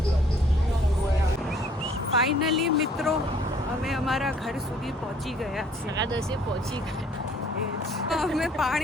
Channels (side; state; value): both; normal; correlation 0.59